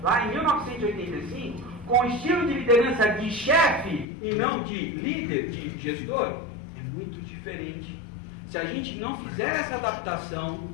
lá em 1985, com o estilo de liderança de chefe e não de líder, de gestor, é muito diferente. se a gente não fizer essa adaptação,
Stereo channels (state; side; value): drops out; right; at 4.0 s